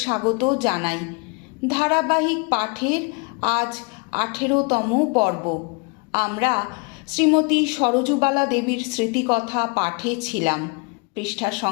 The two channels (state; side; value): quieter; right; 29.8 dB